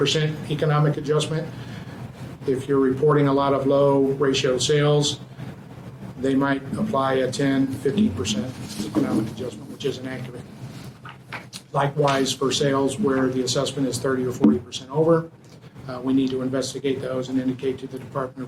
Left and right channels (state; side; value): identical; both; correlation 1.00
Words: economic adjustment, if you're reporting a lot of low ratio sales, they might apply a 10, 15% economic adjustment, which isn't accurate. Likewise, for sales where the assessment is 30 or 40% over, we need to investigate those and indicate to the Department